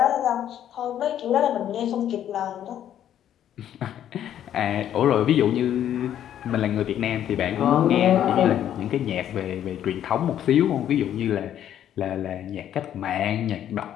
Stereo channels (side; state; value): right; quieter; 10.7 dB